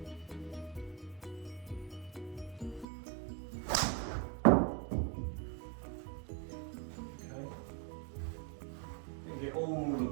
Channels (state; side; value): drops out; left; at 2.9 s